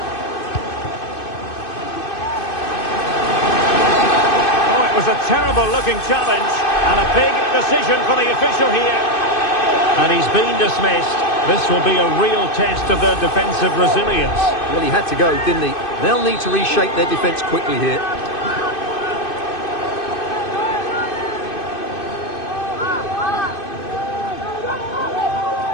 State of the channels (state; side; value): late; right; 2.6 ms